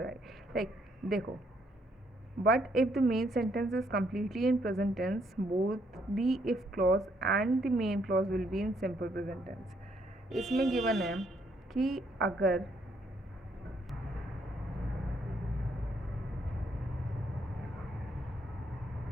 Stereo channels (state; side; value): normal; both; correlation 0.71